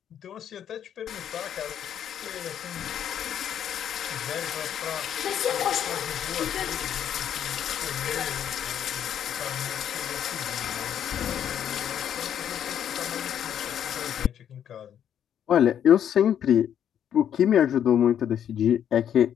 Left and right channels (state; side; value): quieter; right; 9.5 dB